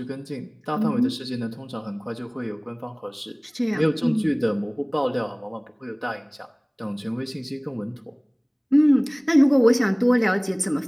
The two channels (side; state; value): both; identical; correlation 1.00